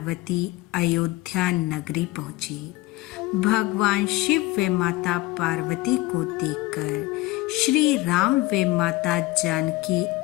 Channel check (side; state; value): right; quieter; 19.3 dB